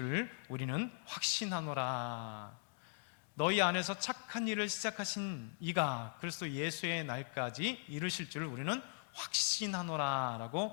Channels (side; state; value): right; silent; digital silence